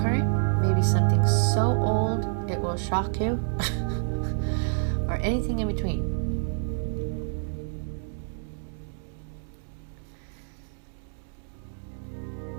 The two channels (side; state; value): left; silent; 59 dB below the other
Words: maybe something so old it will shock you, or anything in between.